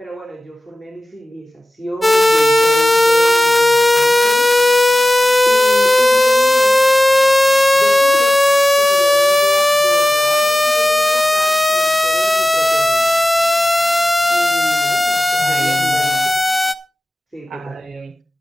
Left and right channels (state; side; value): normal; both; correlation 0.96